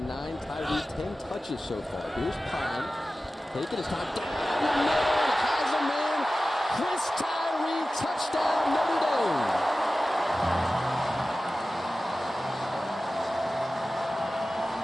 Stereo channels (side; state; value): both; normal; correlation 0.96